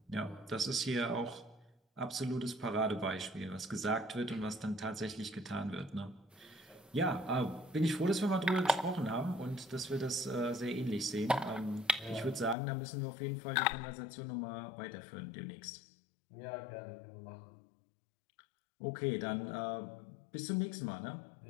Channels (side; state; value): right; drops out; at 12.6 s